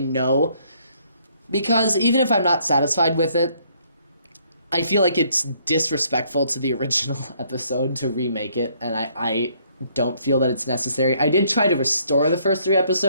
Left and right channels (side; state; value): both; inverted; correlation -0.67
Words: because even if I'm not satisfied with it, I feel like it's disrespectful to the original episode to remake it, and I don't feel that it's necessary. I did try to restore the first 3